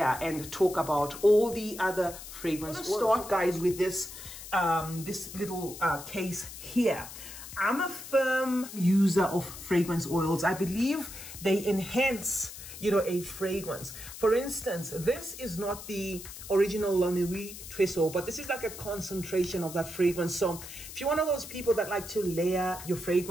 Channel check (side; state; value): left; noise; hiss, 12 dB below the sound